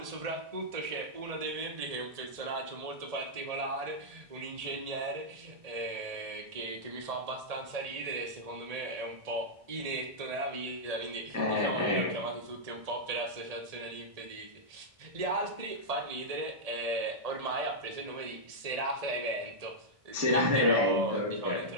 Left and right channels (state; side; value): late; left; 1.7 ms